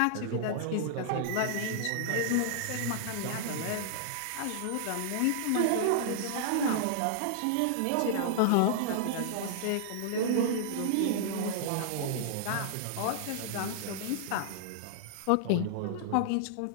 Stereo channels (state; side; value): different; both; correlation -0.01